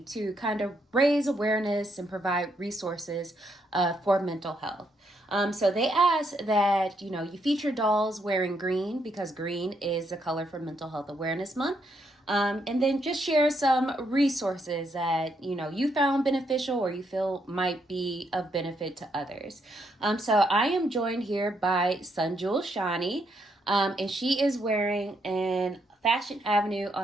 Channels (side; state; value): both; normal; correlation 0.76